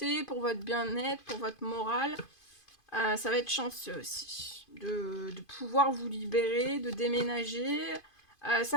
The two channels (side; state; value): right; late; 2.5 ms